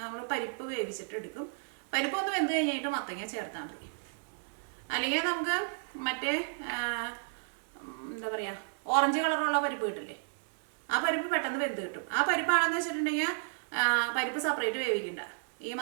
നമ്മൾ പരിപ്പ് വേവിച്ചിട്ട് എടുക്കും. പരിപ്പ് ഒന്ന് വെന്ത് കഴിഞ്ഞിട്ട് മത്തങ്ങ ചേർത്താൽ മതി. അല്ലെങ്കിൽ നമുക്ക് മറ്റേ എന്താ പറയുക ഓറഞ്ച് കളറുള്ള പരിപ്പ് കിട്ടില്ലേ, ആ പരിപ്പ് പെട്ടെന്ന് വെന്ത് കിട്ടും. ആ പരിപ്പാണെന്ന് വെച്ചിട്ടുണ്ടെങ്കിൽ പരിപ്പ് സെപ്പറേറ്റ് വേവിക്കണ്ട. ഈ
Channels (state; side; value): silent; left; digital silence